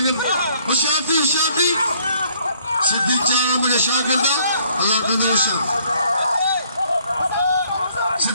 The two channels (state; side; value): inverted; both; correlation -0.65